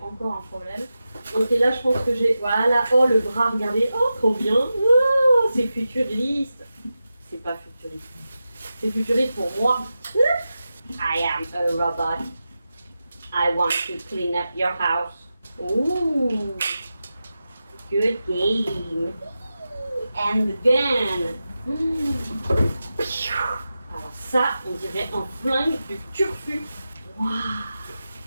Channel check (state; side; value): inverted; both; correlation -0.92